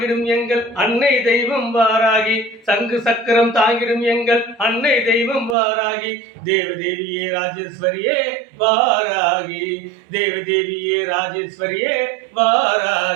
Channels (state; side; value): drops out; left; at 5.6 s